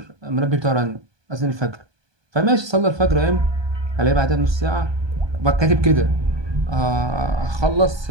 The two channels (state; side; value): late; left; 1.2 ms